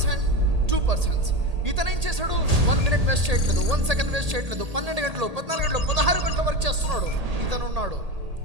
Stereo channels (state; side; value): late; left; 1.8 ms